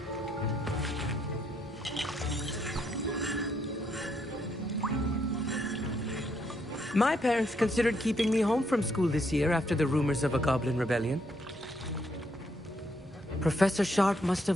My parents considered keeping me home from school this year after the rumors of a goblin rebellion. Professor Sharp must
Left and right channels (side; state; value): both; normal; correlation 0.74